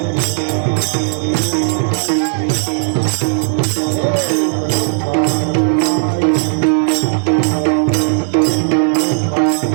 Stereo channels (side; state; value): left; silent; digital silence